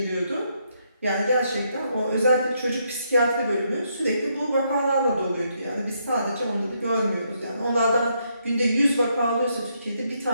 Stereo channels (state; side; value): inverted; both; correlation -0.76